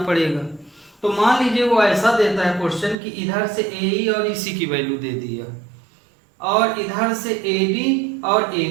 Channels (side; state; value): left; drops out; at 3.0 s